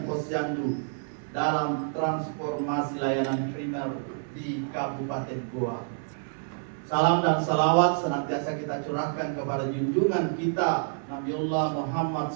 posyandu dalam transformasi layanan primer di Kabupaten Goa. Salam dan salawat senantiasa kita curahkan kepada junjungan kita Nabiullah Muhammad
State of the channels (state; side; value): silent; left; 59 dB below the other